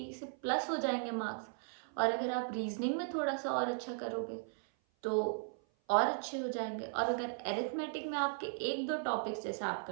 से प्लस हो जाएंगे मार्क्स। और अगर आप रीजनिंग में थोड़ा सा और अच्छा करोगे तो और अच्छे हो जाएंगे। और अगर एरिथमेटिक में आपके एक दो टॉपिक्स जैसे आप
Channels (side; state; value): left; silent; 53 dB below the other